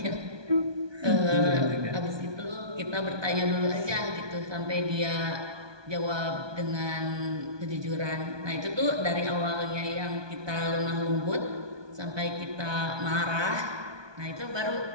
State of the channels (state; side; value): late; left; 1.2 ms